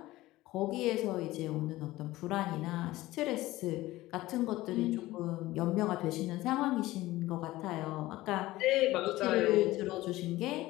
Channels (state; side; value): quieter; right; 17.6 dB